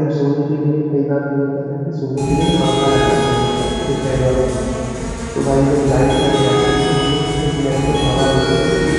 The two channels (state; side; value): identical; both; correlation 1.00